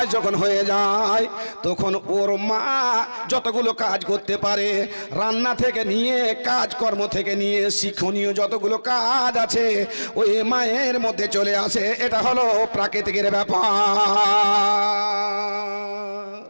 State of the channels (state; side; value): inverted; both; correlation -1.00